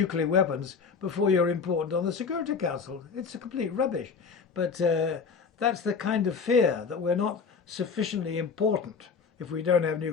weapons before you're important on the Security Council. It's a complete rubbish. But that's the kind of fear that we're not sufficiently important if we don't have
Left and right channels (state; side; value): quieter; right; 5.6 dB